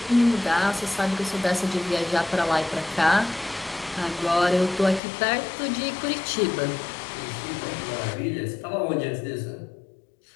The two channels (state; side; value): drops out; right; at 5.0 s